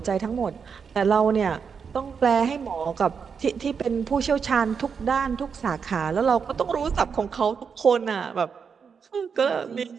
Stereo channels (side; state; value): left; quieter; 6.2 dB